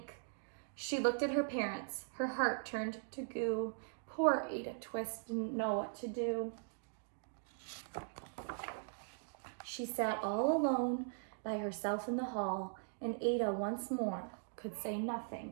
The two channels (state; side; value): silent; left; digital silence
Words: She looked at her parents. Her heart turned to goo. Poor Ada Twist didn't know what to do. She sat all alone by herself in the hall, and Ada once more could say